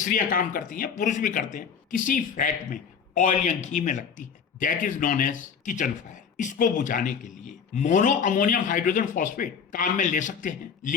काम करती हैं, पुरुष भी करते हैं, किसी फैट में, ऑयल या घी में लगती है, that is known as kitchen fire. इसको बुझाने के लिए मोनो अमोनियम हाइड्रोजन फॉस्फेट काम में ले सकते हैं,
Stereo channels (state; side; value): quieter; right; 6.8 dB